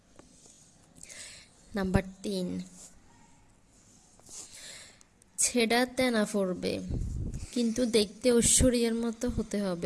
নাম্বার 3, ছেঁড়া তেনা পড়বে, কিন্তু দেখতে ঐশ্বরিয়ার মতো হতে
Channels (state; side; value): identical; both; correlation 1.00